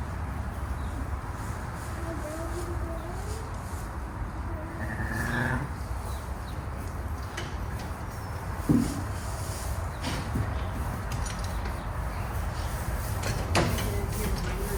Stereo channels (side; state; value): both; identical; correlation 1.00